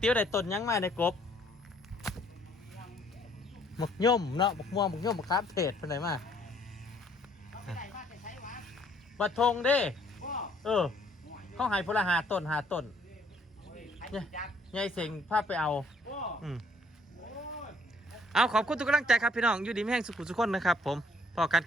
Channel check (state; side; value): normal; both; correlation 0.63